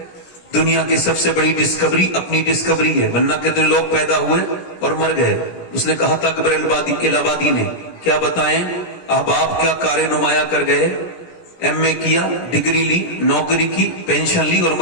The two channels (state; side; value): late; right; 17 ms